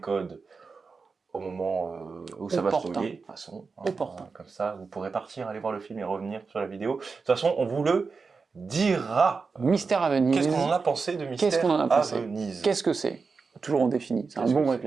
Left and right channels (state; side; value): quieter; left; 4.7 dB